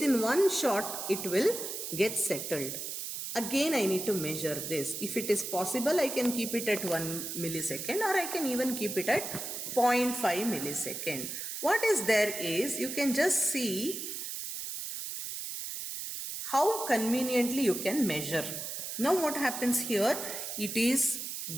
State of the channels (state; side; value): noise; right; hiss, 6 dB below the sound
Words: one shot it will get settled. Again I need to measure this. If it is possible, I can keep it at 1 millisecond, or I can even keep it at 0.5 millisecond. What is there is, you can just see how conveniently you can measure. Now what happens here? It is